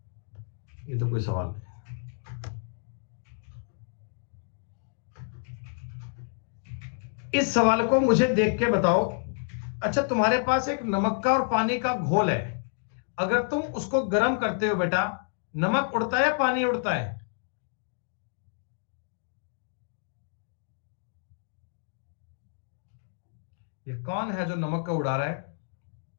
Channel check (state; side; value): silent; right; digital silence